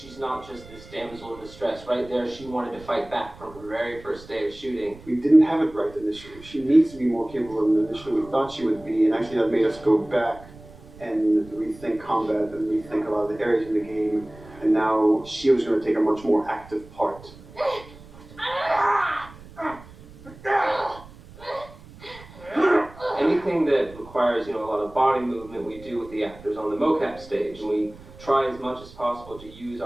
not just this damsel in distress. Right there, she wanted to fight back from her very first day of shooting. We didn't have it right initially. She needs to be more capable than initially we thought she would be, and actually that made us go back and rethink combat and rethink a lot of the areas in the game, and now she was going to take a much more active part. Anything that requires, you know, a lot of body movement, we do with the actors on the mocap stage. And we try as much as possible to use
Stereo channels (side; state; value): right; noise; rumble, 20 dB below the sound